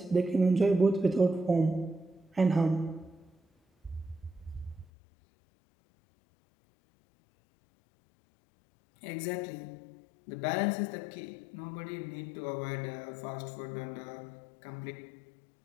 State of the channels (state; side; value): drops out; right; at 4.9 s